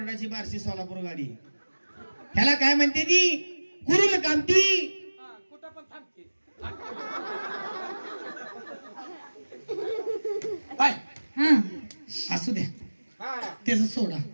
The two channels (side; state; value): both; inverted; correlation -1.00